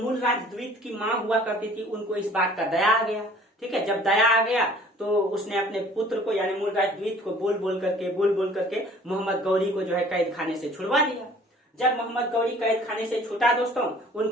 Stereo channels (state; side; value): normal; both; correlation 0.52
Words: मूलराज द्वितीय की माँ हुआ करती थी, उनको इस बात का दया आ गया, ठीक है, जब दया आ गया तो उसने अपने पुत्र को यानी मूलराज द्वितीय को बोल बोल करके मोहम्मद गौरी को जो है कैद खाने से छुड़वा दिया। जब मोहम्मद गौरी कैद खाने से छूटा दोस्तों,